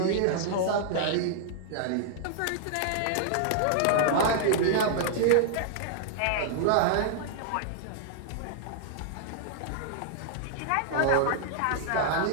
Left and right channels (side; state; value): both; different; correlation -0.01